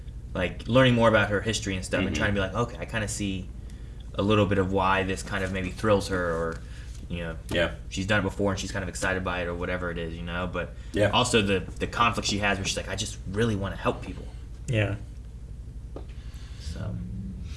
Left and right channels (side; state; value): both; identical; correlation 1.00